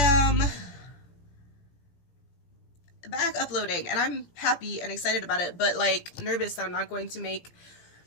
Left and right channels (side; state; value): right; late; 17 ms